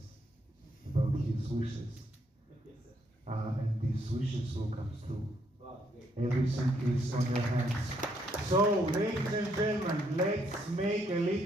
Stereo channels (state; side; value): normal; both; correlation 0.73